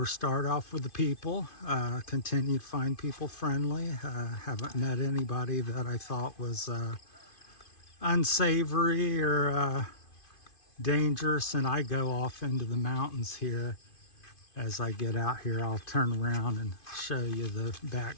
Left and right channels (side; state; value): right; late; 2.5 ms